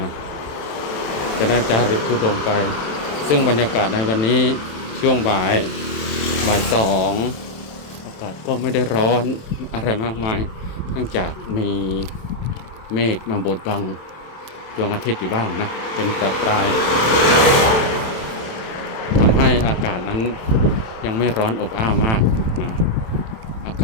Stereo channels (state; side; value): late; right; 27 ms